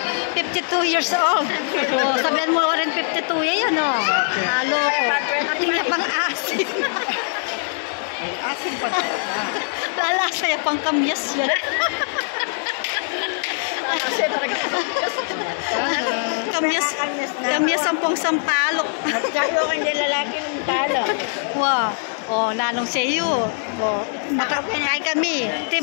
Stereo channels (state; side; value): silent; right; digital silence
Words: 52 years old. Oh, sabihan mo rin 52 yan, oh. Halo ko. At niya pang asin. Asin pa talaga. Lalasa niya pang kamyas yan. Kasi talaga. Kamyas ang pong sampalok. Nagsayo kang din lalaki ng talo. Wow. Oh, nanong sa'yo. Oh, kay kami,